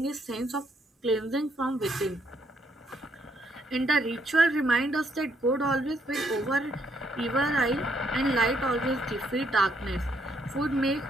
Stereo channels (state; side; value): normal; both; correlation 0.72